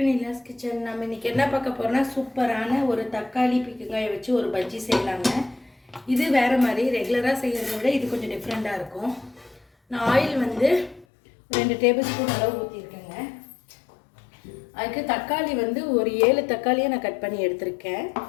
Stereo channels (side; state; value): right; drops out; at 11.1 s